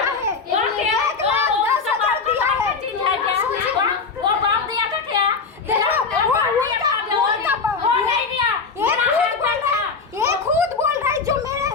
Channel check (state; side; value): quieter; right; 4.9 dB